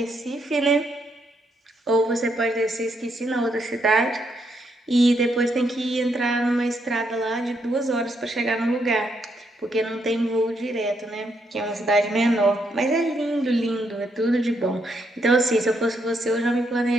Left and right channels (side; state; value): both; normal; correlation 0.77